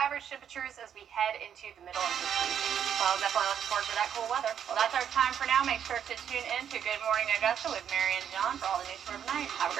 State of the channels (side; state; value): left; quieter; 8.8 dB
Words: temperatures as we head into the middle of this week. Well, definitely looking forward to that cool weather. Well, that's our time for now. Make sure to tune in to Good Morning Augusta with Mary and John for all the news for tonight. Have a